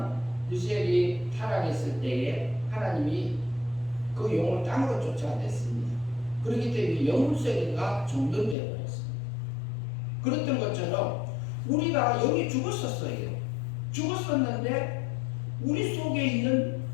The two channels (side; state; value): right; drops out; at 8.6 s